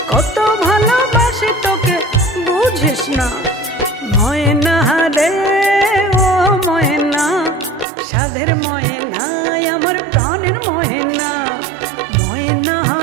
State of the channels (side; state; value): left; drops out; at 7.9 s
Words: কত ভালোবাসি তোকে বুঝিস না। ময়না রে ও ময়না, সাধের ময়না আমার প্রাণের ময়না, ময়না